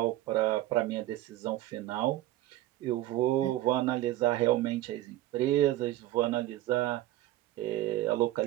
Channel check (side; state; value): left; quieter; 15.1 dB